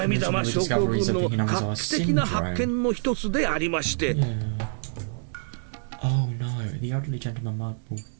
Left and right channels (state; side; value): silent; left; digital silence